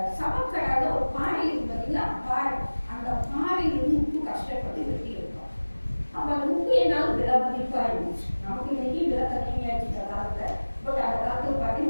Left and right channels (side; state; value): both; inverted; correlation -1.00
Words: சமக்கடால ஒரு பாறை இருக்கு பார்த்தீங்களா பாறை, அந்த பாறையிலிருந்து உப்பு கஷ்டப்பட்டு வெட்டி எடுத்தோம். அப்போ அந்த உப்பு என்னால் விலை மதிப்பாக இருந்துச்சு. நமக்கு இன்னைக்கு விலை கம்மியாச்சு இந்த காலத்தில். பட் அந்த காலத்தில்